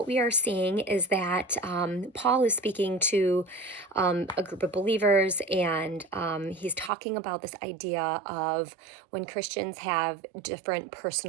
we are seeing is that Paul is speaking to a group of believers, and he's talking about this idea of when Christians have different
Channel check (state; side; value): drops out; left; at 6.9 s